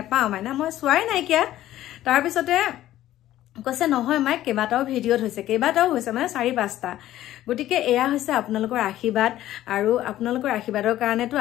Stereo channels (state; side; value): quieter; right; 13.7 dB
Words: মাইনা মই চোৱাই নাইকিয়া তাৰ পিছতে কৈছে নহয় মাই কেইবাটাও ভিডিঅ'ত হৈছে মানে 4-5টা গটিকে এয়া হৈছে আপোনালোকৰ আশীৰ্বাদ আৰু আপোনালোকৰ আশীৰ্বাদৰ কাৰণেটো